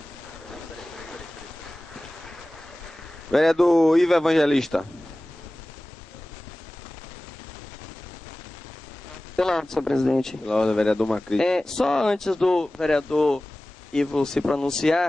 Vereador Ivo Evangelista. Pela ordem, senhor presidente. Pela ordem, vereador Macri. Só antes do vereador Ivo se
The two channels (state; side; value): normal; both; correlation 0.97